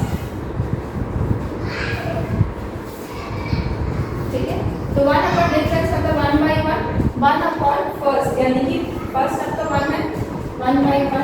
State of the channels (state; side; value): identical; both; correlation 1.00